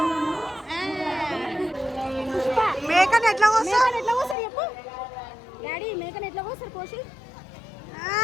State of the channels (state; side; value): drops out; right; at 4.4 s